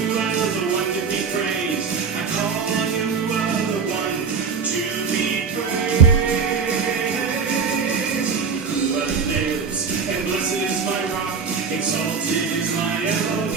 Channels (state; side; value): quieter; left; 5.7 dB